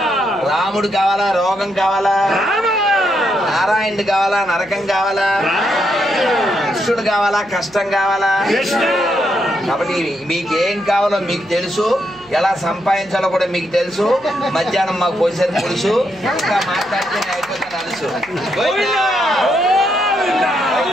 రాముడు కావాలా, రోగం కావాలా? నారాయణుడు కావాలా, నరకం కావాలా? కృష్ణుడు కావాలా, కష్టం కావాలా? కాబట్టి మీకేం కావాలో మీకు తెలుసు, ఎలా సంపాదించాలో కూడా మీకు తెలుసు. మధ్యాహ్నం మాకు పోసేది తెలుసు, ఇంకా మాట్లాడితే అయిపోతే తెలుసు.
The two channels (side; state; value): right; noise; hum, 28 dB below the sound